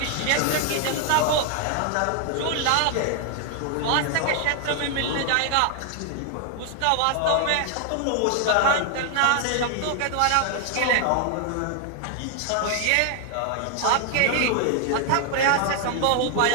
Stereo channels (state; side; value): different; both; correlation 0.00